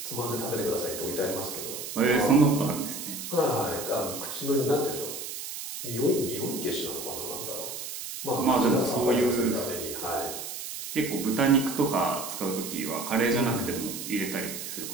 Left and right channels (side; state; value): right; noise; hiss, 7 dB below the sound